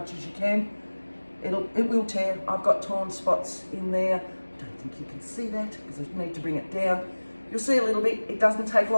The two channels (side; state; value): both; inverted; correlation -1.00